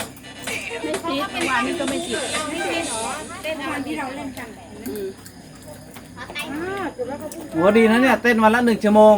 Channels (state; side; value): identical; both; correlation 1.00